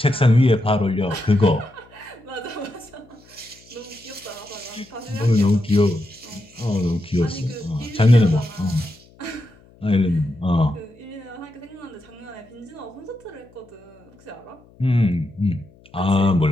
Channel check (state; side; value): noise; left; hum, 27 dB below the sound